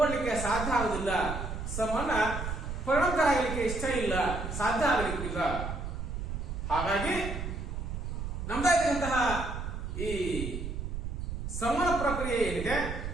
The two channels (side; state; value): right; noise; rumble, 5 dB below the sound